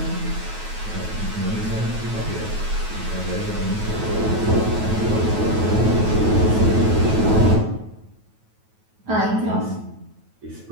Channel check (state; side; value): late; left; 9.3 ms